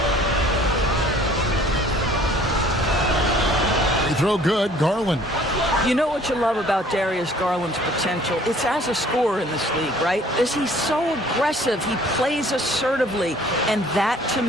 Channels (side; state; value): both; normal; correlation 0.54